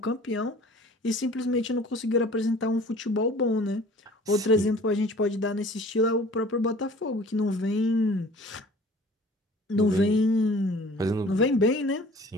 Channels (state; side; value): normal; both; correlation 0.48